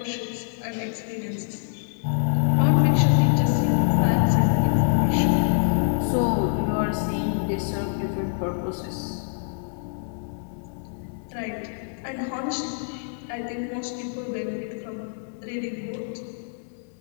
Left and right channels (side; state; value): right; silent; 62 dB below the other